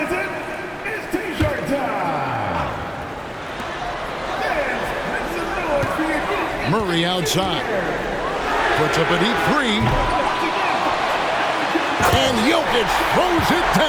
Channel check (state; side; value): identical; both; correlation 1.00